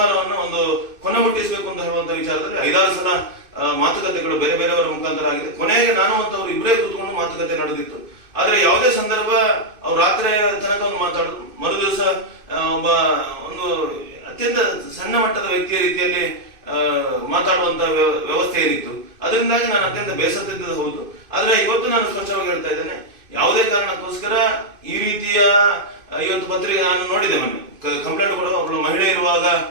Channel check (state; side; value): late; left; 2.5 ms